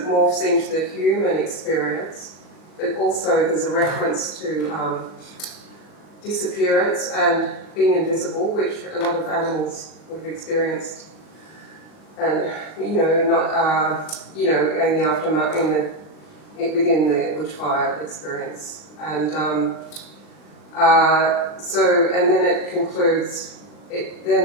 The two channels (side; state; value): right; late; 39 ms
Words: morphs into the human experience, but also there's a reference to disappearance and being invisible, which a lot of animals would have experienced, and in the aftermath, within the bushfire experience, and and then it concludes.